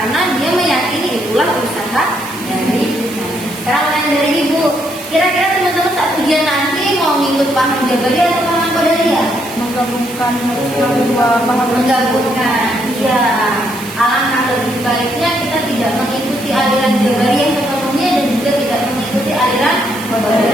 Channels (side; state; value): right; noise; hiss, 15 dB below the sound